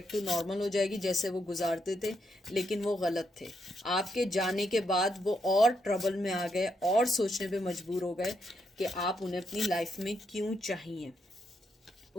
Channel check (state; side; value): normal; both; correlation 0.79